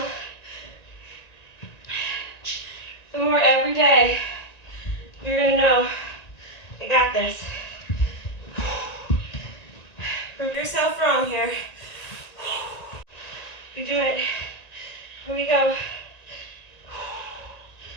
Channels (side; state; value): right; late; 1.9 ms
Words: the more every day you're gonna know, I got this. Prove yourself wrong here. You do it. Here we go.